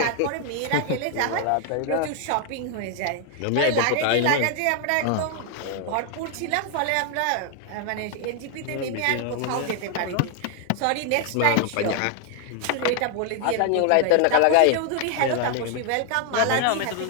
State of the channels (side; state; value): both; different; correlation 0.00